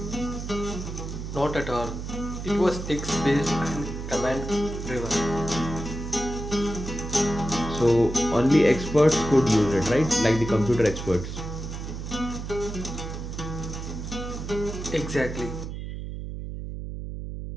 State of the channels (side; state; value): right; noise; hum, 7 dB below the sound